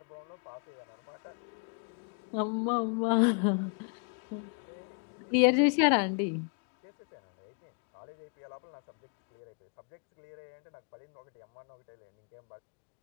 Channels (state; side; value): quieter; right; 39.5 dB